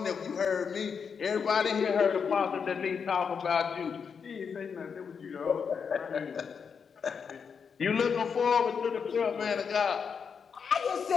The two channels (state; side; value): quieter; right; 6.3 dB